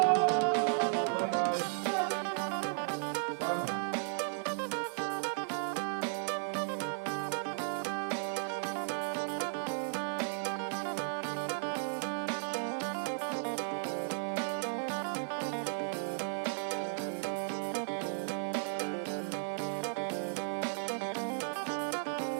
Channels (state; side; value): silent; left; digital silence